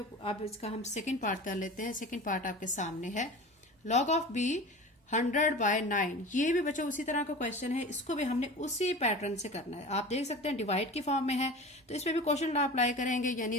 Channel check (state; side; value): normal; both; correlation 0.35